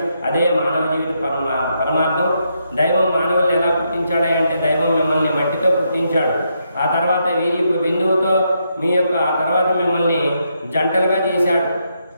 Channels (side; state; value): both; inverted; correlation -0.79